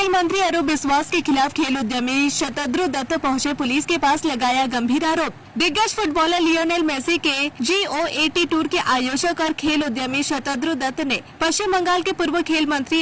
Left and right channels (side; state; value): both; identical; correlation 1.00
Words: मंत्री अरूप बिस्वास के खिलाफ खेल उद्यमी शतद्रु दत्त पहुंचे पुलिस के पास, लगाया गंभीर आरोप। दिग्गज फुटबॉलर लियोनेल मेसी के G-O-A-T टूर के आयोजक और खेल उद्यमी शतद्रु दत्त ने पश्चिम बंगाल के पूर्व खेल मंत्री